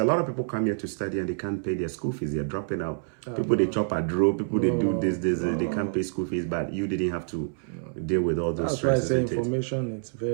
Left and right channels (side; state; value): left; silent; 60 dB below the other